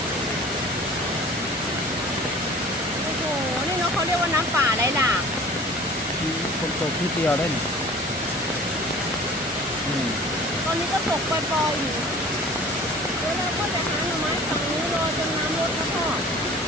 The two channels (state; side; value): normal; both; correlation 0.45